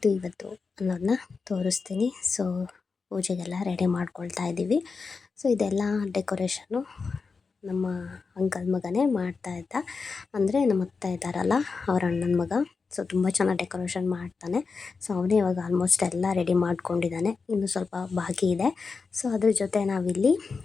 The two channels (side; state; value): right; quieter; 4.8 dB